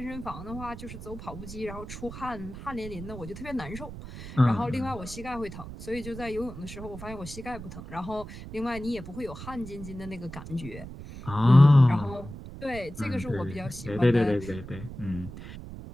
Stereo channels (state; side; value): noise; right; rumble, 12 dB below the sound